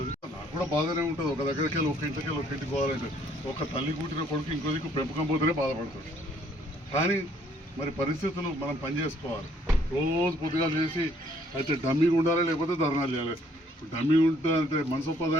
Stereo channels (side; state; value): both; normal; correlation 0.64